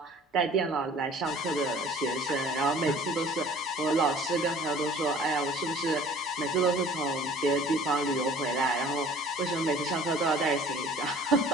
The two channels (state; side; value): normal; both; correlation 0.49